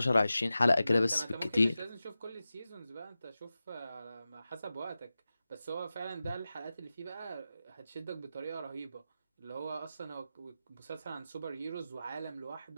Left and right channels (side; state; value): both; inverted; correlation -0.94